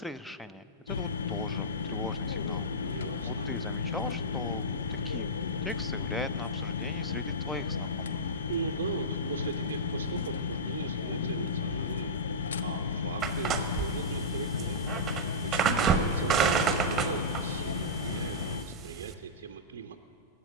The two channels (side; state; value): both; normal; correlation -0.16